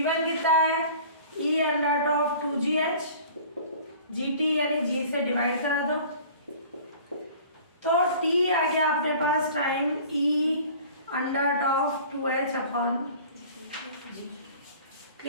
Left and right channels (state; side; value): inverted; both; correlation -0.46